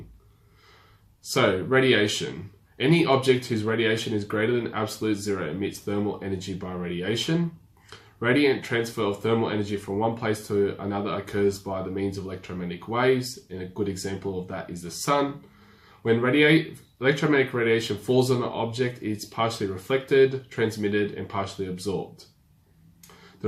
So radiation. Any object whose radiation is greater than absolute zero emits thermal energy by radiation. Radiant transfer of thermal energy from one place to another occurs by the means of electromagnetic waves, and a good example of that is the sun. When electromagnetic radiation falls on an object, it's partially reflected, transmitted, and partially absorbed.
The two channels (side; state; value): both; identical; correlation 1.00